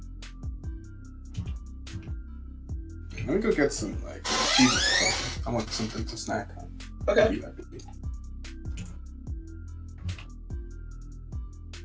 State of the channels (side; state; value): both; identical; correlation 1.00